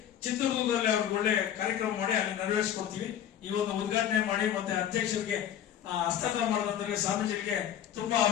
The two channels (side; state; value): right; quieter; 10.2 dB